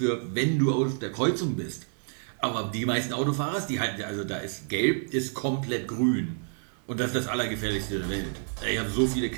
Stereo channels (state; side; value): silent; left; 59 dB below the other